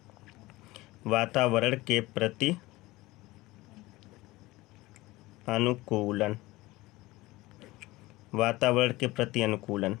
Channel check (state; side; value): quieter; right; 19.8 dB